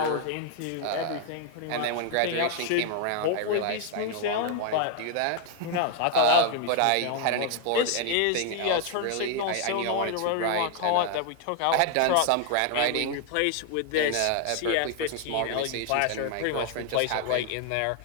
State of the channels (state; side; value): different; both; correlation 0.00